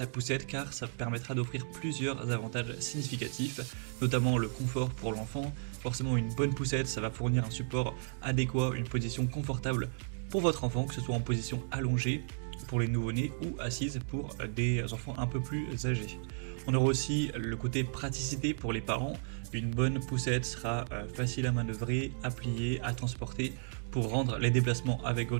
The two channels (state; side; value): silent; left; digital silence